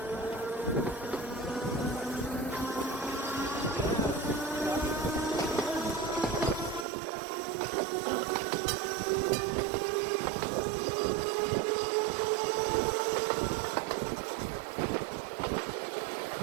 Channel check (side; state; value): left; drops out; at 6.9 s